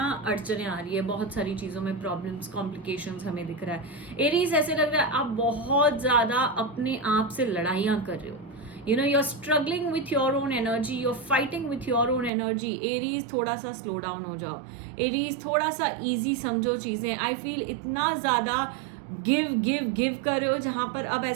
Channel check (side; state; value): left; drops out; at 12.3 s